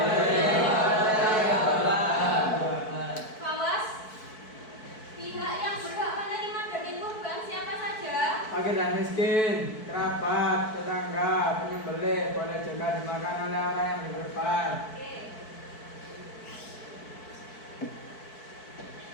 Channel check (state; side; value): late; right; 4.6 ms